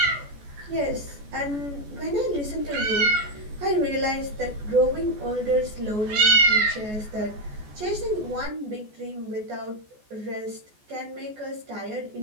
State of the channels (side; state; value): left; late; 14 ms